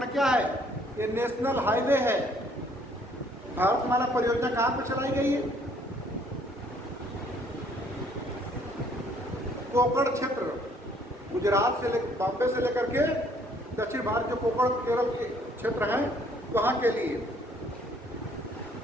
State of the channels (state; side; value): normal; both; correlation 0.62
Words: क्या है? ये नेशनल हाईवे है। भारतमाला परियोजना कहाँ पे चलाई गई है? कोकण क्षेत्र, गुजरात से बॉम्बे से लेकर के दक्षिण भारत के कोकण केरल के क्षेत्र हैं, वहां के लिए।